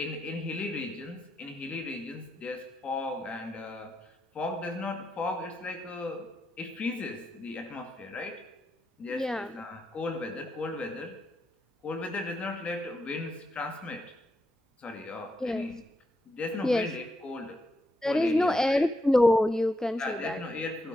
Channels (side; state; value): both; normal; correlation 0.84